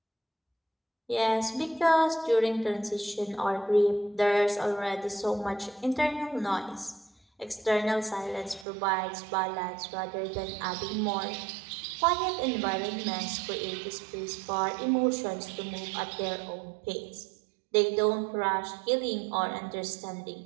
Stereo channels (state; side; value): drops out; left; at 8.7 s